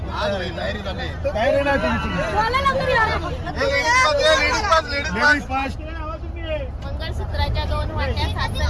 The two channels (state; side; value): identical; both; correlation 1.00